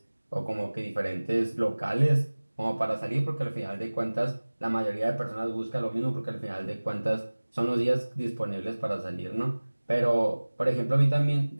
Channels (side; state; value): both; inverted; correlation -1.00